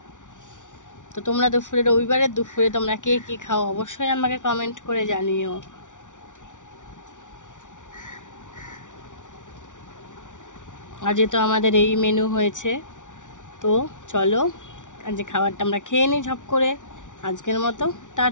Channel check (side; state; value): right; late; 0.87 ms